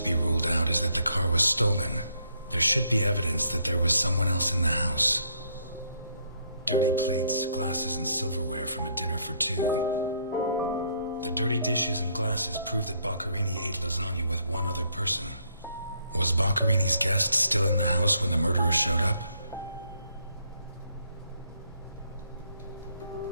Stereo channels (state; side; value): inverted; both; correlation -0.70